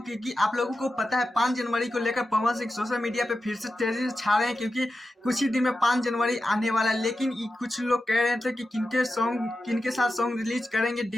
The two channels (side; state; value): both; normal; correlation 0.91